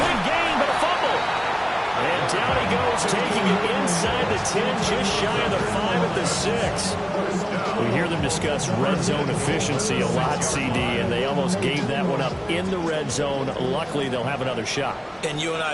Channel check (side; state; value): both; identical; correlation 1.00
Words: Big gain, but a fumble. And down he goes, taking it inside the 10, just shy of the 5 at the 6. We hear them discuss red zone efficiency a lot, CD, and they almost gave that one up in the red zone. Luckily, they'll have another shot. And you and